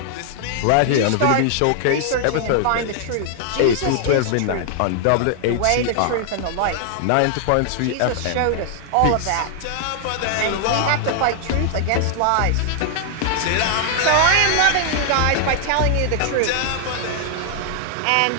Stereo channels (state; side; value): different; both; correlation 0.00